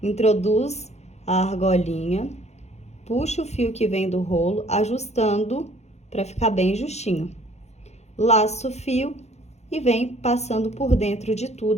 introduz a argolinha, puxa o fio que vem do rolo, ajustando para ficar bem justinho. Laça o fio e vem passando por dentro de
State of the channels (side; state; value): right; late; 0.32 ms